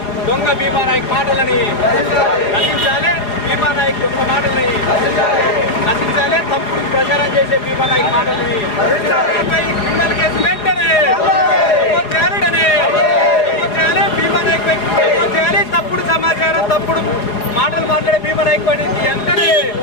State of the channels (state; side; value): late; right; 4.7 ms